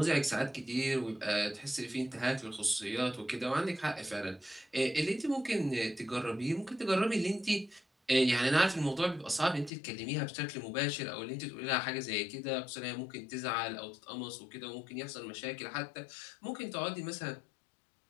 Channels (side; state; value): right; drops out; at 9.7 s